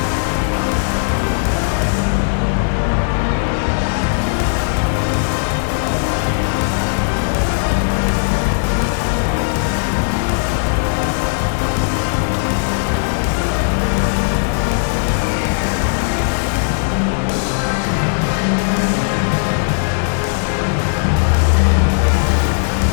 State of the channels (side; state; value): right; silent; digital silence